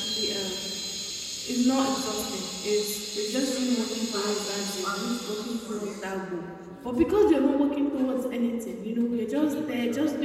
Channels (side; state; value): both; identical; correlation 1.00